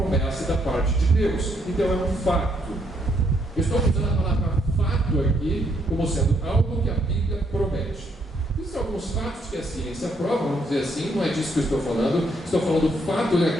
da parte de Deus. Então é um fato. Eu estou usando a palavra fato aqui como sendo algo que a Bíblia promete. Existem alguns fatos que a ciência prova, vamos dizer assim, não é disso que eu estou falando. Estou falando do fato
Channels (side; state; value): both; normal; correlation 0.73